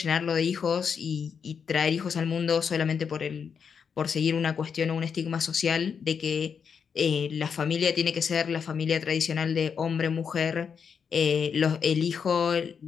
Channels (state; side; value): quieter; right; 6.6 dB